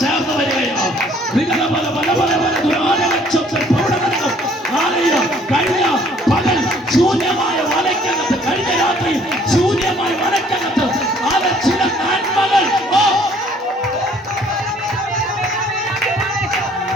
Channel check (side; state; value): both; normal; correlation 0.59